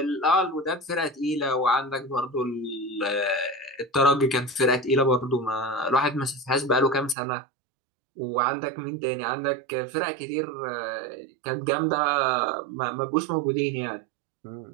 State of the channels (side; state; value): left; drops out; at 7.2 s